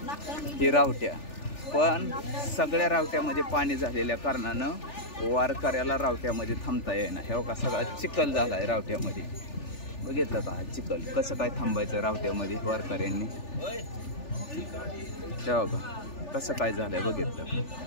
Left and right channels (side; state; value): right; late; 3.4 ms